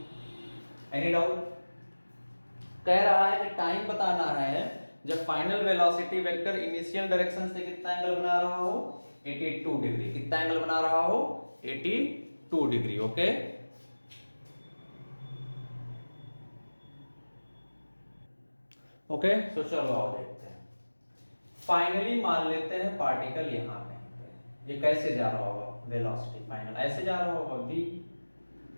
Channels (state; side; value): inverted; both; correlation -1.00